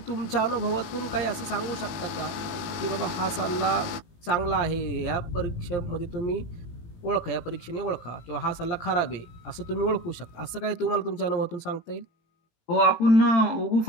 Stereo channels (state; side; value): late; right; 18 ms